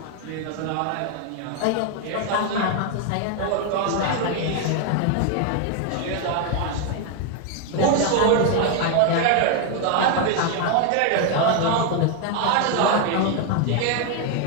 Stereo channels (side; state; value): both; different; correlation 0.01